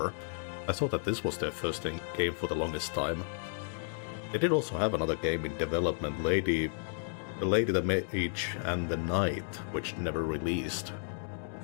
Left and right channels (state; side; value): silent; right; digital silence